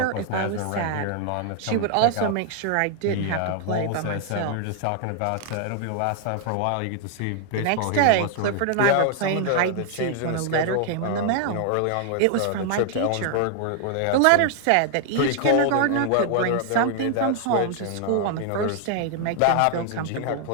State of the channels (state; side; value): different; both; correlation 0.00